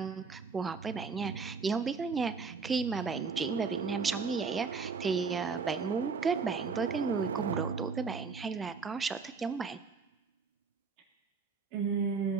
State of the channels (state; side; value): quieter; left; 5.0 dB